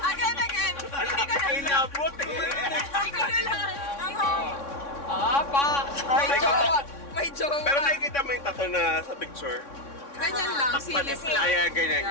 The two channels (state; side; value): late; right; 3.6 ms